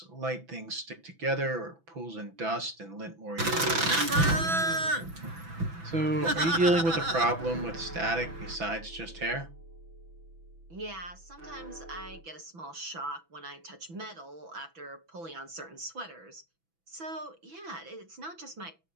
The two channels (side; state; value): left; late; 6.0 ms